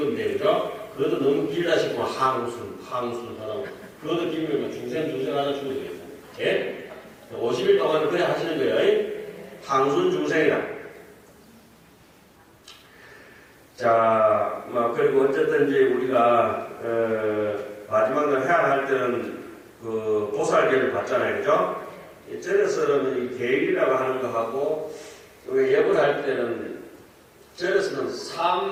되죠. 그것도 너무 길다 싶으면 항순 하라고. 그것도 길면 중생 하나 주면 되겠다. 예? 50일 동안은 그래 하시는 거예요. 항순 중생이다. 자, 그리고 어쨌든 이제 우리가, 마지막으로 해야 할 때는 그 보살계를 받잖아요. 그죠? 절에서는 이 계율이라고 하는 거하고, 예불 할 때는, 절에서는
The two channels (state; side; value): identical; both; correlation 1.00